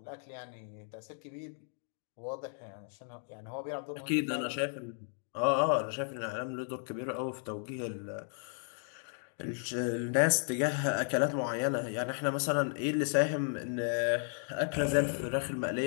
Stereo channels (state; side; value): silent; right; 55 dB below the other